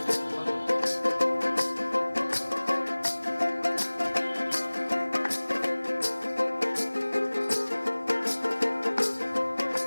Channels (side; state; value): both; inverted; correlation -1.00